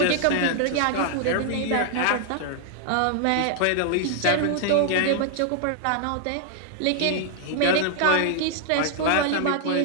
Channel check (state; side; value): different; both; correlation 0.00